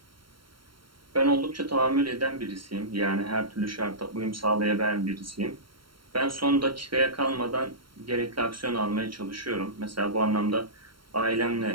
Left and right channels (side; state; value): left; late; 0.73 ms